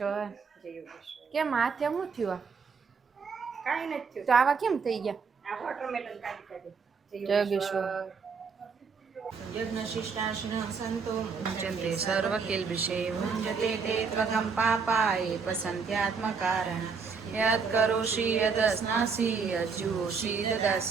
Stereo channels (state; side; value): quieter; left; 5.4 dB